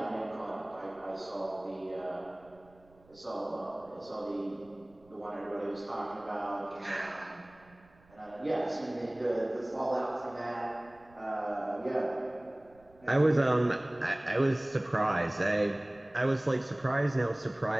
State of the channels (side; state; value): right; noise; rumble, 28 dB below the sound